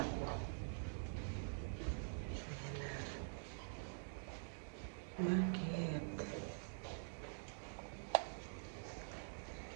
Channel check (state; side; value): silent; left; digital silence